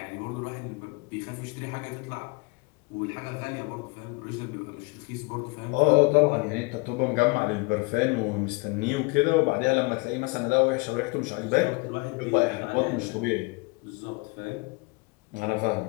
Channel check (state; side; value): quieter; right; 27.8 dB